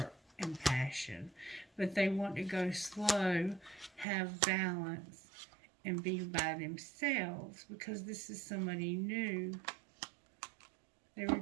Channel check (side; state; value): left; drops out; at 4.0 s